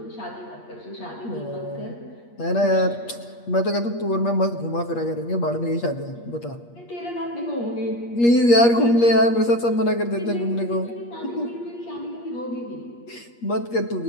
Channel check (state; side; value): late; right; 8.5 ms